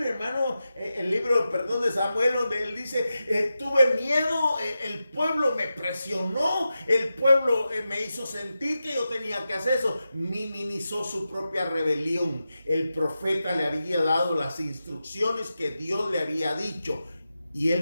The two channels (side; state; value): both; inverted; correlation -0.91